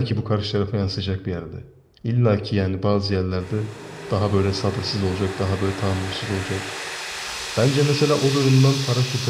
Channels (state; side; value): identical; both; correlation 1.00